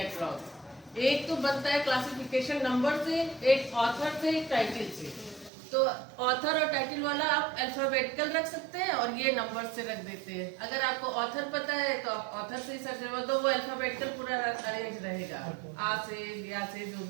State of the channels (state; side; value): drops out; left; at 5.5 s